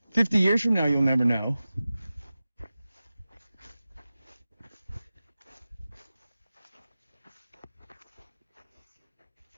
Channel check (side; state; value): both; inverted; correlation -0.95